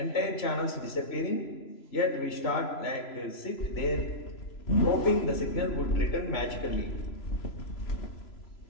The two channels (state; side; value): late; right; 3.0 ms